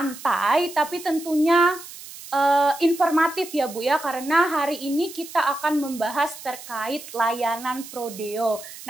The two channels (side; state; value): right; noise; hiss, 15 dB below the sound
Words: tapi tentunya informatif ya Bu ya, karena hari ini kita akan membahas terkait layanan prodeo.